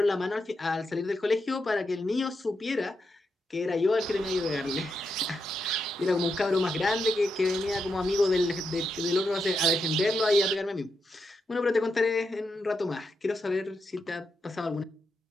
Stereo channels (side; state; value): both; normal; correlation 0.84